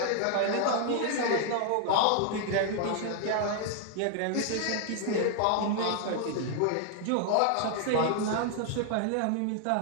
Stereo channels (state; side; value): different; both; correlation 0.00